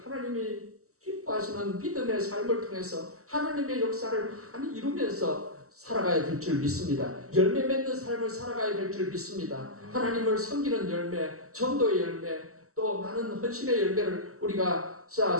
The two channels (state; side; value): late; left; 0.64 ms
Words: 하나님이 기뻐하시는 믿음의 삶을 통해서 하나님의 역사를 많이 이루면서 살아가야 될 줄 믿습니다. 열매 맺는 삶을 살아가야 될 줄 믿습니다. 하나님을 섬기는 열매, 전도의 열매, 또 많은 헌신의 열매를 우리가